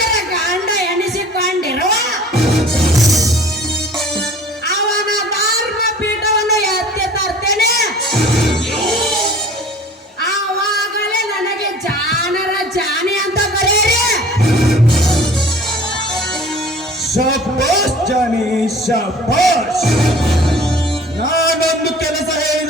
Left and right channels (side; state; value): both; normal; correlation 0.47